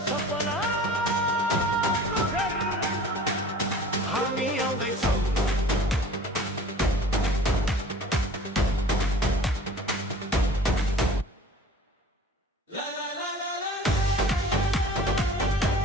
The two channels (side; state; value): both; normal; correlation 0.45